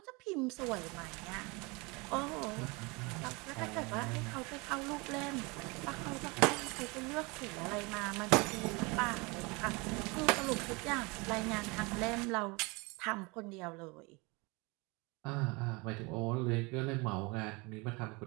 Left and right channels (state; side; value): quieter; left; 27.2 dB